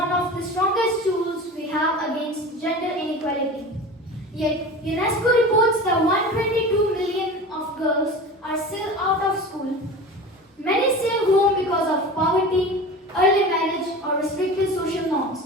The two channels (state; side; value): normal; both; correlation 0.34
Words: of the strongest tools we have against gender inequality. Yet, UNESCO reports that 122 million of girls are still out of school. Many stay home because of poverty, early marriage, or restricted social norms.